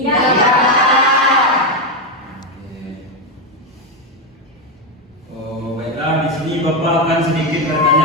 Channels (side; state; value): both; normal; correlation 0.08